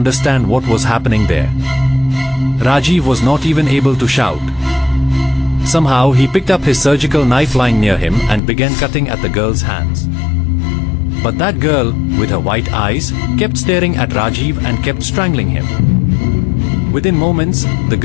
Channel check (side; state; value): right; drops out; at 8.4 s